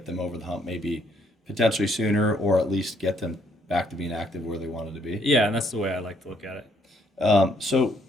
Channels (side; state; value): both; normal; correlation 0.68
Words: them over the hump, maybe potentially sooner, or at least get them back to being active where they wanted to be. Yeah, and that's the way I like to look at it. So